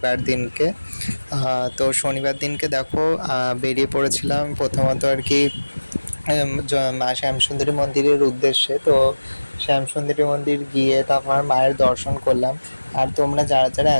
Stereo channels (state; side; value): inverted; both; correlation -1.00